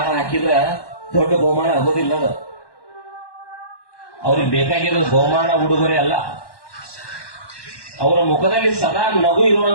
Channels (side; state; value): right; late; 1.1 ms